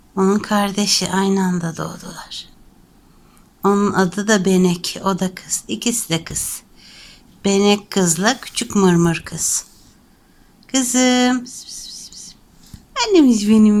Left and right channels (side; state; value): both; identical; correlation 1.00